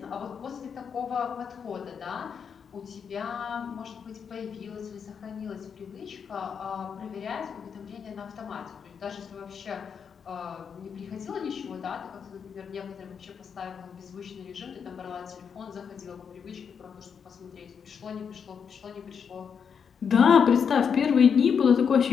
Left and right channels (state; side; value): quieter; right; 6.8 dB